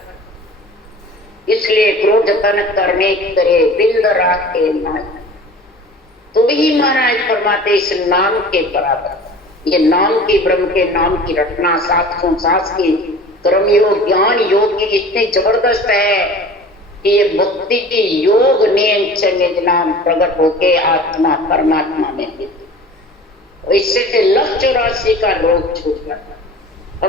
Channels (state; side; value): normal; both; correlation 0.41